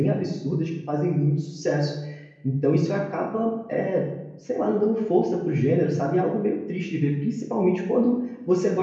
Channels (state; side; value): identical; both; correlation 1.00